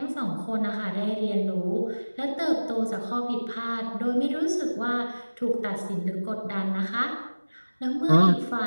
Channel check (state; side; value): inverted; both; correlation -1.00